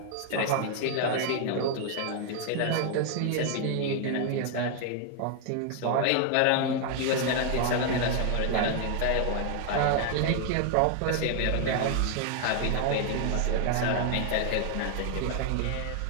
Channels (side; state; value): both; different; correlation 0.00